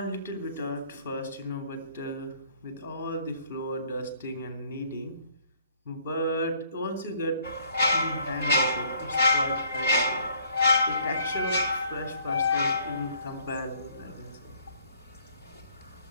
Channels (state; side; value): inverted; both; correlation -0.63